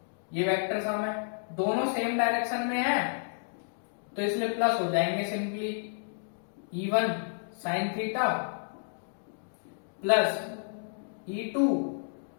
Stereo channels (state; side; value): silent; right; digital silence